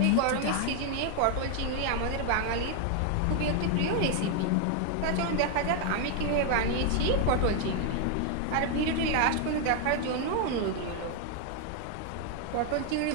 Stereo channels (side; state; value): both; different; correlation 0.00